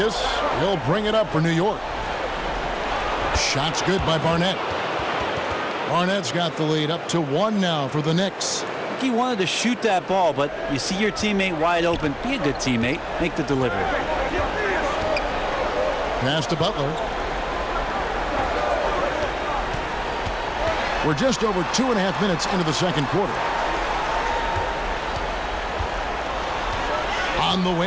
He'll bring it up for New York. Shot's good by Barnett. Barnett's got the lead up to 1 now for the Knicks. I think he wanted to shoot that ball, but you see your teammate wide open. Be a good teammate. Make the delivery. Pass to Butler. We're just over 2.5 minutes into the second quarter. On the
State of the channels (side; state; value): both; identical; correlation 1.00